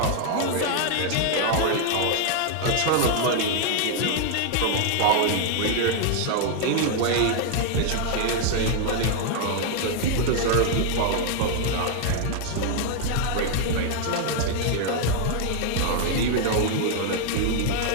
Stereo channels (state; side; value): different; both; correlation 0.00